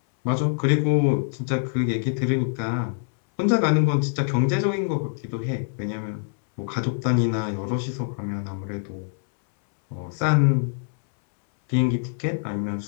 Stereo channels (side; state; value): right; silent; 62 dB below the other